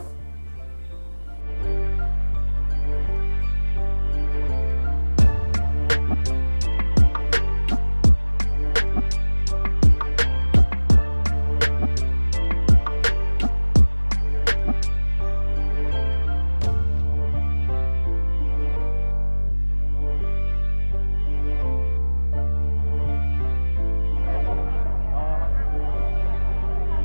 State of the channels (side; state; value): both; inverted; correlation -1.00